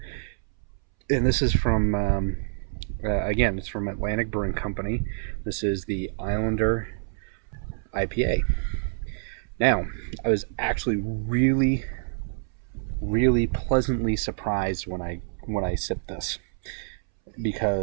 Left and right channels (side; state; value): left; silent; 60 dB below the other